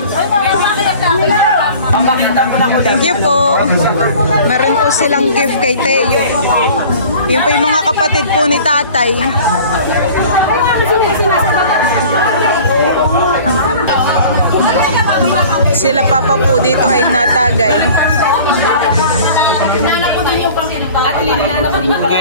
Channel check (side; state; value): both; inverted; correlation -0.45